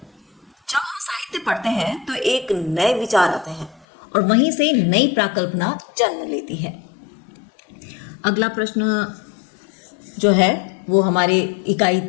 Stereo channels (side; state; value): right; drops out; at 3.9 s